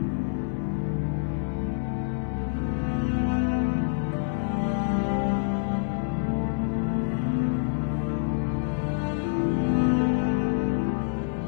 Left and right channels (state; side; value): silent; right; 59 dB below the other